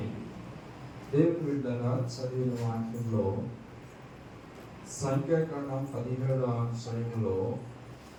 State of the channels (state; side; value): identical; both; correlation 1.00